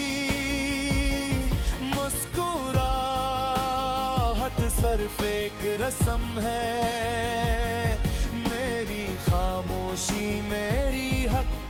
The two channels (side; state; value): both; identical; correlation 1.00